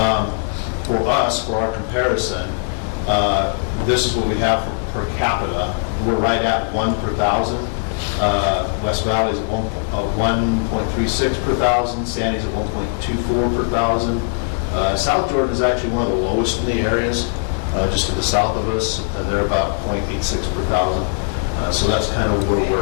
For us, for our comparison, this is what we have per capita. We're right at 1 per 1,000. West Valley is at 1.36 per 1,000. Sandy's at 1.24 per 1,000. South Jordan is actually one of the lowest in the areas, just to the south of us. They're about 0.86 per 1,000. So that's kind of where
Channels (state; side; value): silent; right; 59 dB below the other